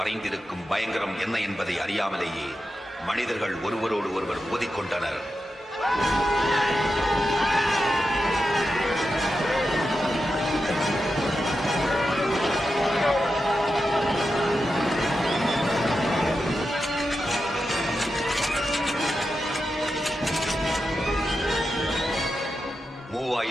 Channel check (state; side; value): normal; both; correlation 0.89